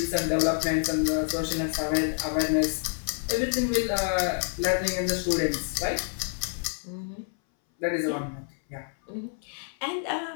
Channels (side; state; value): right; silent; 59 dB below the other